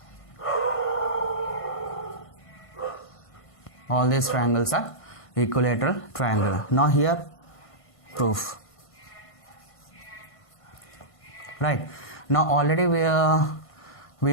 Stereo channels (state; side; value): late; right; 1.5 ms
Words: All these triangles are equilateral triangle. Now here proof. Right. Now already